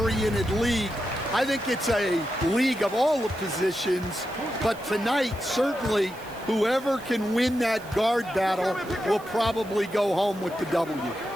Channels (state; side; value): noise; right; hiss, 22 dB below the sound